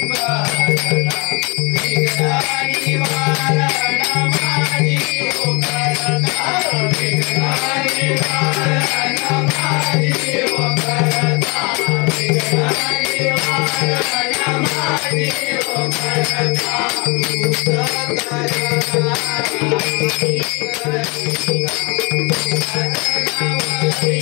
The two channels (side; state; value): right; quieter; 29.2 dB